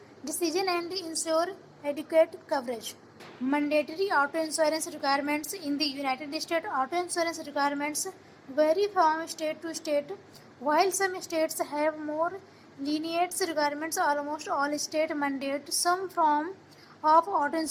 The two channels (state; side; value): identical; both; correlation 1.00